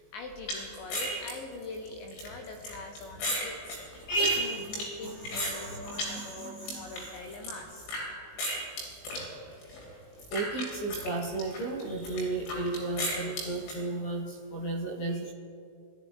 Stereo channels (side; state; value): right; late; 19 ms